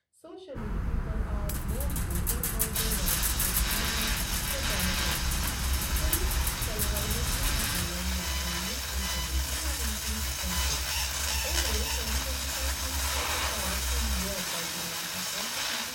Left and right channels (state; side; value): identical; both; correlation 1.00